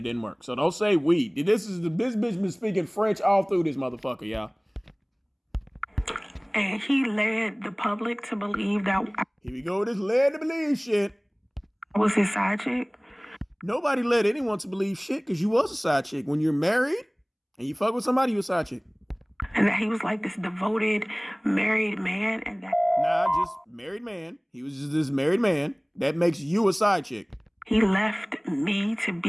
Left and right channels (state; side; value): identical; both; correlation 1.00